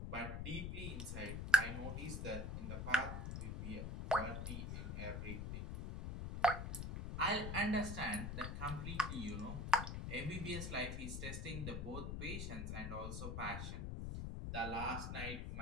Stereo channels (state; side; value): noise; left; rumble, 4 dB below the sound